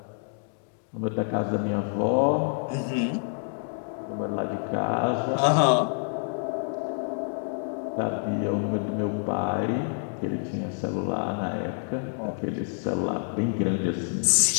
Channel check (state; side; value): silent; right; digital silence